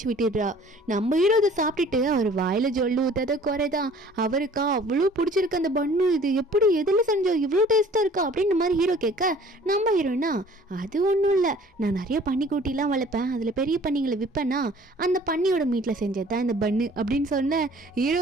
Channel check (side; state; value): both; normal; correlation 0.52